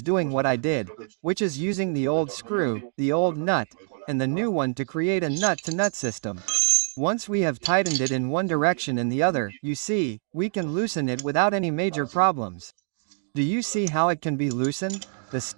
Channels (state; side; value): silent; left; digital silence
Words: doing what I did, which is using the old screw, the old nut, and the new one to create a nut-to-nut system. Once we have tightened it in one direction and the other, you see, we can loosen it without any major problems. Do you see how it can be loosened? The